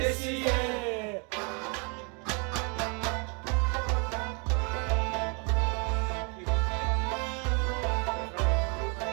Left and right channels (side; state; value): left; quieter; 34.4 dB